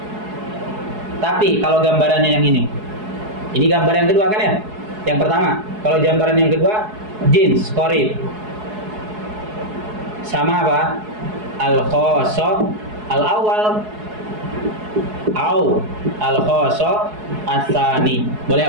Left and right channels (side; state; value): left; late; 4.7 ms